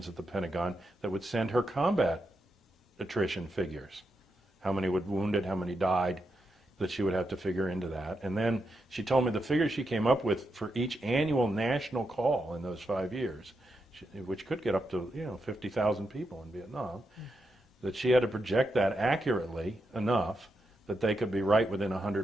at the Pentagon that would send her combat attrition figures. How many would wounded, how many died, that she would have to figure into that. And then she told me the figure she came up with for each annual national call in those 5 years, which could get up to 50,000 people in Vietnam, that she had to project that accurately enough that they could be right within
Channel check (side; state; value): both; normal; correlation 0.85